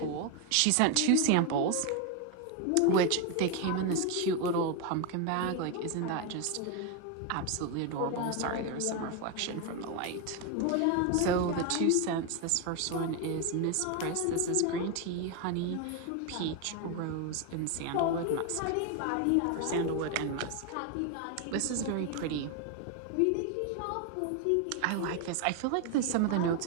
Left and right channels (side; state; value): both; different; correlation 0.02